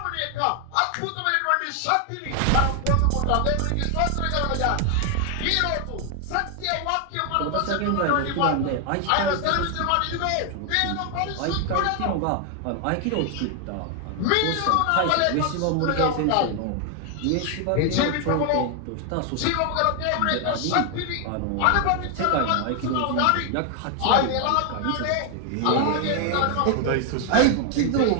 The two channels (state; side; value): different; both; correlation 0.00